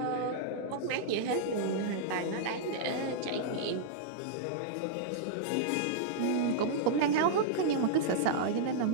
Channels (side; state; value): both; different; correlation -0.02